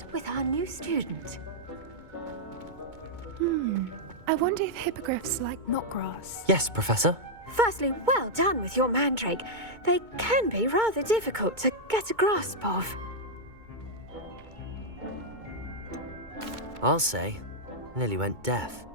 with our new student. I wonder if hippogriffs like knotgrass. Yes, Professor. Firstly, well done with your mandrake. They can be rather difficult to get a grasp of. I'll say, nearly went deaf.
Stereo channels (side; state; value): left; late; 2.2 ms